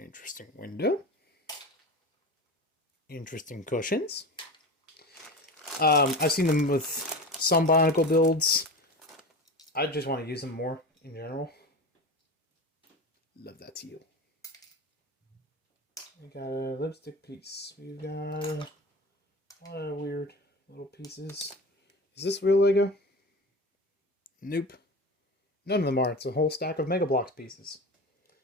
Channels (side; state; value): both; normal; correlation 0.29